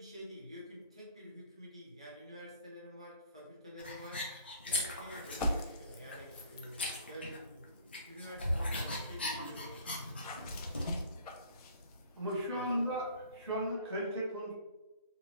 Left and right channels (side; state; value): both; inverted; correlation -0.53